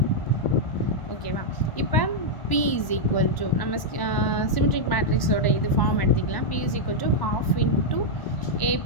ஓகேவா? இப்போ P இஸ் ஈக்குவல் டு நம்ம சிமெட்ரிக் மேட்ரிக்ஸோட இது ஃபார்ம் எடுத்துக்கலாம். P is equal to ½ into A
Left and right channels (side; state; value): right; late; 1.0 ms